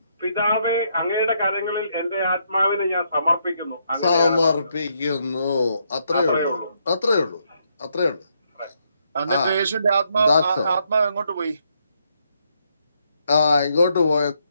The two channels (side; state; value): both; inverted; correlation -0.75